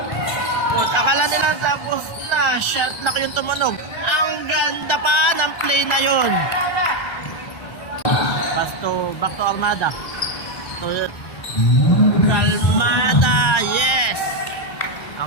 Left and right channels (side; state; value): right; late; 1.3 ms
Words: Akala nila tapos na shot lock yung tumunog. Ang ganda pa ng play na yun. Back to Armada. Kalmada, yes.